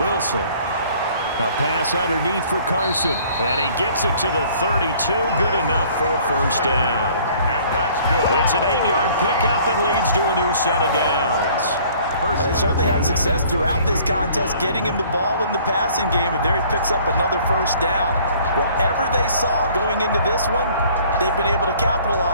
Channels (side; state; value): both; inverted; correlation -0.55